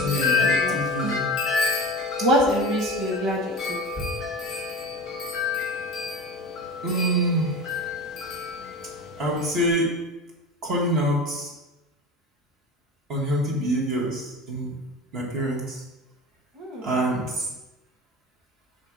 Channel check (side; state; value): both; normal; correlation 0.31